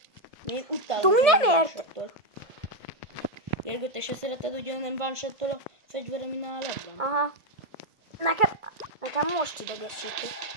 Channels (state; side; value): late; left; 1.6 ms